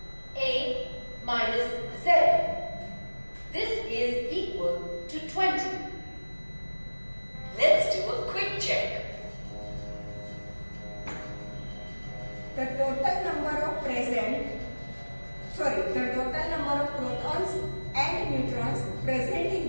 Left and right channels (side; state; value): both; inverted; correlation -1.00